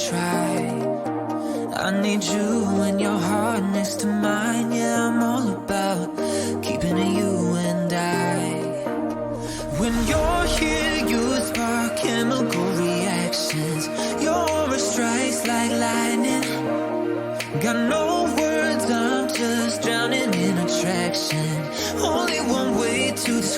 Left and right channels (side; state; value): both; identical; correlation 1.00